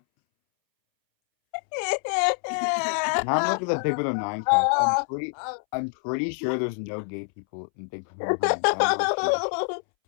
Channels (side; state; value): right; silent; 61 dB below the other